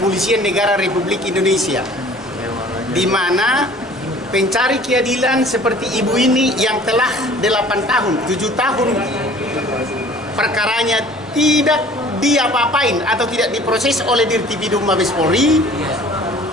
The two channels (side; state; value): both; normal; correlation 0.49